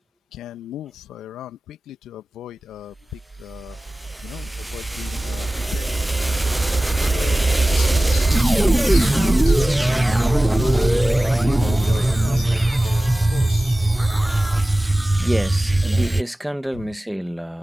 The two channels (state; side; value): normal; both; correlation 0.97